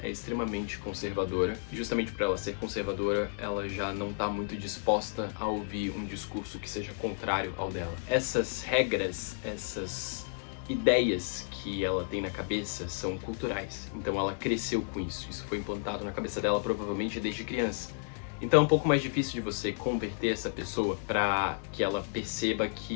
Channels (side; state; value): right; silent; digital silence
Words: é extremamente conservadora e justamente por ela ser conservadora, ela já não tá muito disposta a ouvir um discurso que seja contrário ao dela. Essas regras, essas ideias que ela tem na cabeça são culturais. Então ela cresceu com isso. Isso foi implantado na cabeça dela provavelmente desde criança. Então é um pouco mais difícil de você converter essa pessoa para que ela perceba